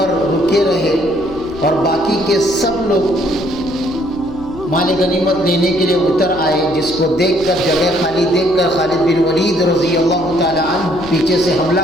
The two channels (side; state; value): left; noise; hum, 20 dB below the sound